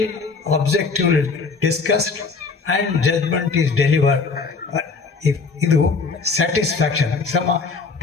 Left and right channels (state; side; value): quieter; right; 4.6 dB